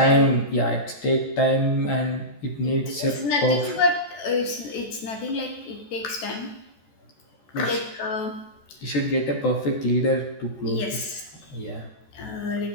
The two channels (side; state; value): right; late; 14 ms